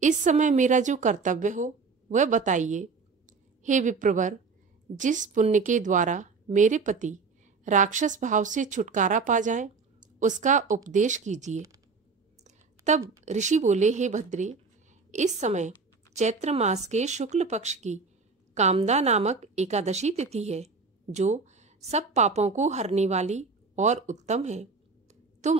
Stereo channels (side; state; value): left; quieter; 4.6 dB